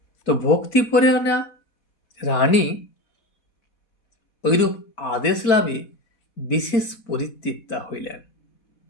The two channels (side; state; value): right; late; 4.1 ms